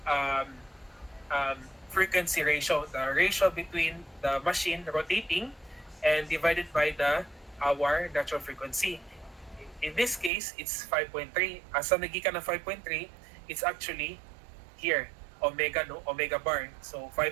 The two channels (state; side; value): drops out; left; at 10.3 s